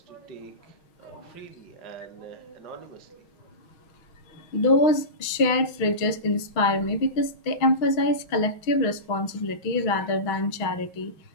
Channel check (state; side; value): late; right; 6.2 ms